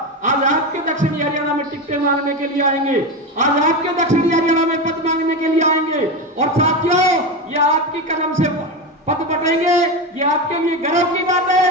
आज आपके दक्षिणी हरियाणा में टिकटें मांगने के लिए आएंगे, आज आपके दक्षिणी हरियाणा में पद मांगने के लिए आएंगे। और साथियों, ये आपकी कलम से पद बटेंगे, ये आपके लिए गर्व की बात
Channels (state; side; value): normal; both; correlation 0.18